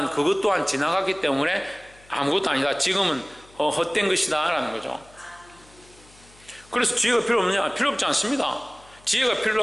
그것 또한 지나갔기 때문에 아무것도 아니다. 지금은 헛된 것이다 라는 거죠. 그래서 지혜가 필요 없느냐? 필요 없지 않습니다. 지혜가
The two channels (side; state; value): left; noise; hum, 27 dB below the sound